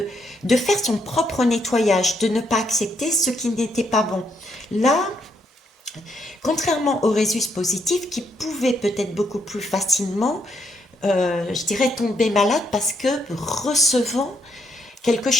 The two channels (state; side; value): normal; both; correlation 0.75